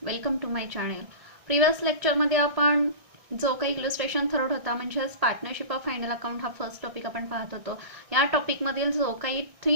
Welcome to my channel. Previous लेक्चरमध्ये आपण जो काही इलस्ट्रेशन थर्ड होता म्हणजेच पार्टनरशिप ऑफ फायनल अकाउंट हा फर्स्ट टॉपिक आपण पाहत होतो. या टॉपिकमधील जो काही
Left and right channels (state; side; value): late; left; 1.6 ms